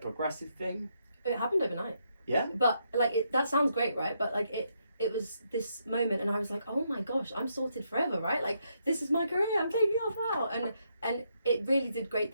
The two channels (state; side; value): inverted; both; correlation -0.78